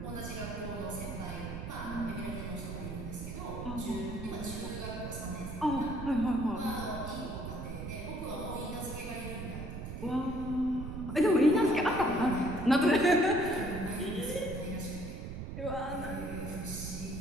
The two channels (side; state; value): right; noise; rumble, 7 dB below the sound